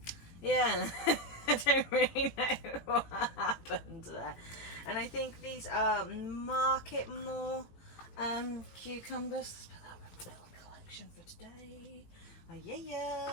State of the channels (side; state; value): right; late; 18 ms